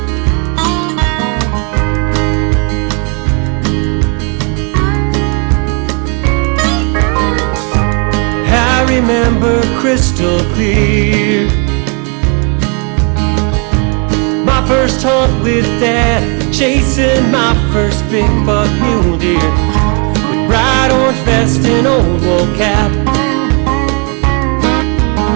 I remember crystal clear my first hunt with Dad, chasing my first big buck mule deer with bright orange vest and old wool cap,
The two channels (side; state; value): left; quieter; 36.1 dB